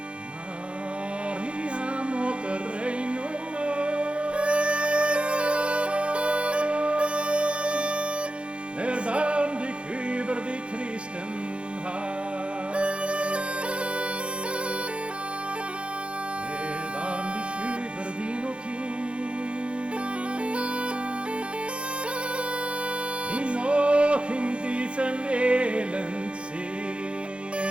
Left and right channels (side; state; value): left; late; 0.058 ms